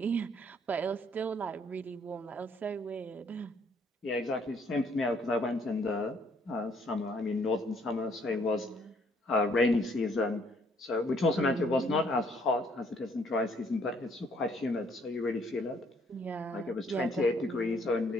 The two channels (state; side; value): normal; both; correlation 0.65